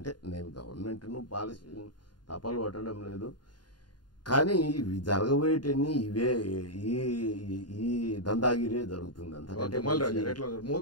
నేను గవర్నమెంట్ను పాలసీ తపాలు పట్టడం లేదు, కానీ ఇవి జరగబోయేటన్ని ఇవే ఈ దందాగిరే జరుగుతుంది. అంతకంటే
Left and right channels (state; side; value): late; right; 0.70 ms